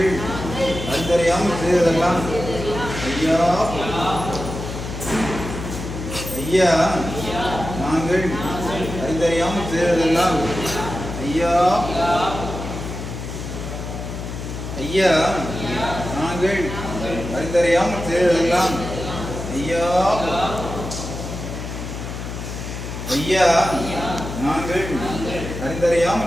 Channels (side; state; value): left; noise; hum, 7 dB below the sound